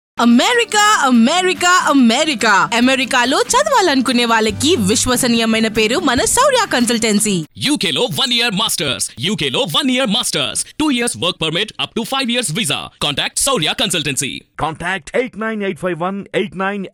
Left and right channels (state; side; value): identical; both; correlation 1.00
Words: అమెరికా అమెరికా అమెరికా అమెరికాలో చదవాలనుకునే వాళ్ళకి విశ్వసనీయమైన పేరు మన శౌర్య కన్సల్టెన్సీ. UK లో 1 year masters, UK లో 1 year masters, 2 years work permit up to 5 years visa. Contact Saurya Consultancy. Contact 89851